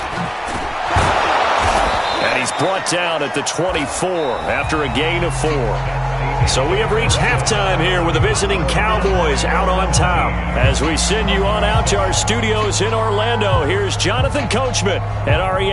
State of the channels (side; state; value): both; identical; correlation 1.00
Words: And he's brought down at the 24 after a gain of 4. So we have reached halftime here with the visiting Cowboys out on top. As we send you on out to our studios in Orlando, here's Jonathan Coachman at